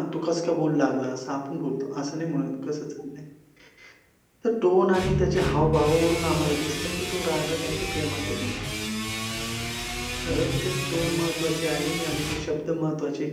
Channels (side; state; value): both; identical; correlation 1.00